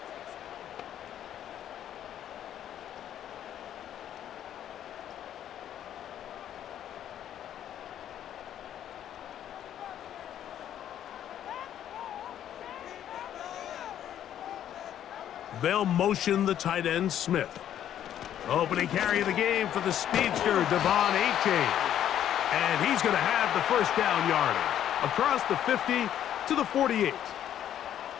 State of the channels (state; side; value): quieter; right; 10.7 dB